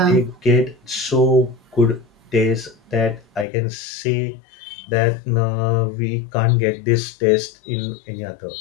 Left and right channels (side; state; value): right; drops out; at 3.5 s